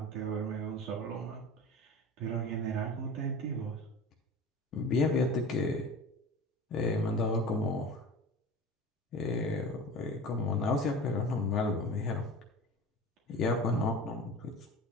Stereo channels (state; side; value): normal; both; correlation 0.35